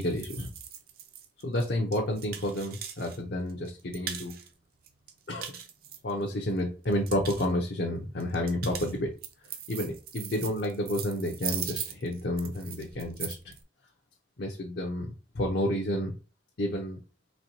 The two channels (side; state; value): both; normal; correlation 0.47